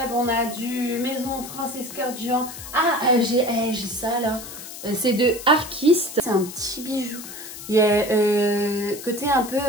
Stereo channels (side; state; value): left; noise; hiss, 12 dB below the sound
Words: on a du Maison Francis Kurkdjian. Ah, j'ai ça là. C'est de Arquiste. C'est un petit bijou. Il y a côté un